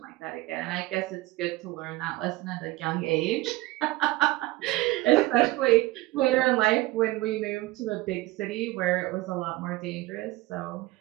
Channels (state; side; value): quieter; left; 19.5 dB